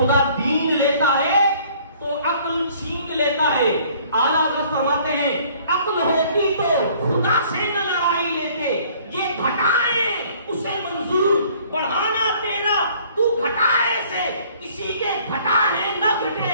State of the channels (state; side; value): inverted; both; correlation -0.57